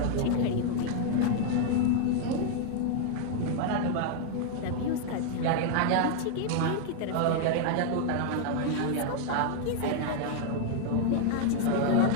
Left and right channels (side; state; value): both; different; correlation 0.00